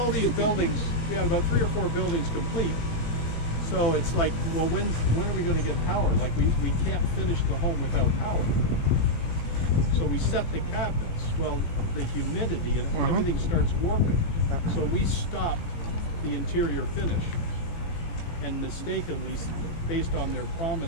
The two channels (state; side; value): late; right; 18 ms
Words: these buildings, we had about 3 or 4 buildings complete. So it's like, well, when are we going to get power? Like we can't finish the home without power. So we set the cabinets. Well, the humidity and everything starts warping. So we stopped the interior finish. And mistakenly, based on their